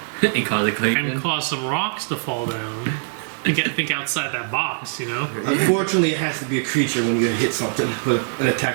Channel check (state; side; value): silent; left; digital silence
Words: and cause a click. and cause some rocks to fall down? Think outside that box, you know. Unfortunately, it has to be a creature when you're gonna hit something with an